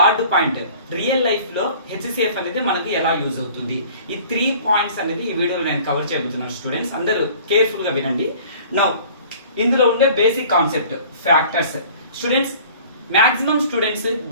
పాయింట్ రియల్ లైఫ్ లో HCF అనేది మనకు ఎలా యూజ్ అవుతుంది. ఈ 3 పాయింట్స్ అనేది ఈ వీడియోలో నేను కవర్ చేయబోతున్నాను. స్టూడెంట్స్ అందరూ కేర్ఫుల్ గా వినండి. నౌ ఇందులో ఉండే basic concept factors. Students maximum students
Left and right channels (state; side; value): inverted; both; correlation -0.49